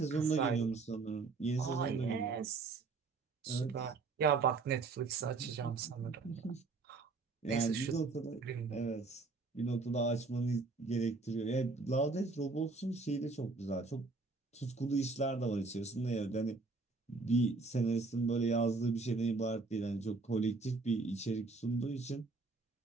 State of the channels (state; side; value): quieter; left; 3.9 dB